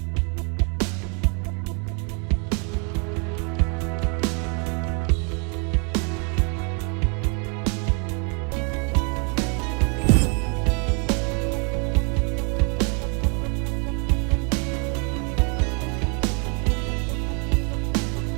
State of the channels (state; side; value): quieter; left; 36.3 dB